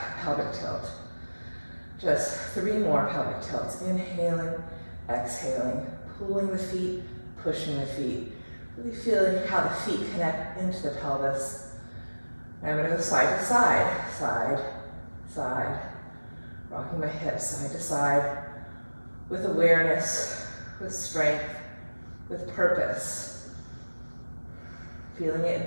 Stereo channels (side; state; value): both; inverted; correlation -1.00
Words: pelvic tilt. Just 3 more pelvic tilts. Inhaling, exhaling, pulling the feet, pushing the feet. Really feeling how the feet connect into the pelvis. I'm going to go side to side, side, side. Rocking my hips side to side with awareness, with strength, with purpose. Feeling it